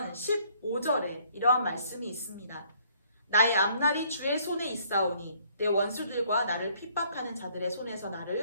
15절에 이러한 말씀이 있습니다. 나의 앞날이 주의 손에 있사오니 내 원수들과 나를 핍박하는 자들의 손에서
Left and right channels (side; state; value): both; inverted; correlation -0.62